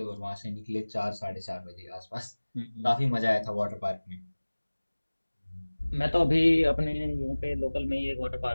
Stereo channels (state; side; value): inverted; both; correlation -1.00